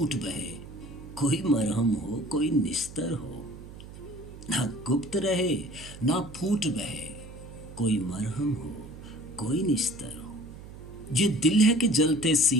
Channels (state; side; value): noise; right; hum, 15 dB below the sound